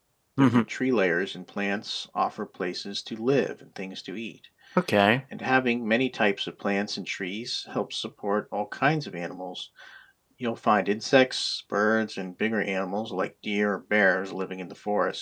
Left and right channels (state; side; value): identical; both; correlation 1.00